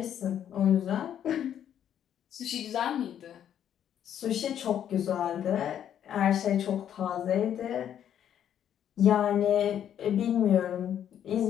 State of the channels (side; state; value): right; quieter; 9.8 dB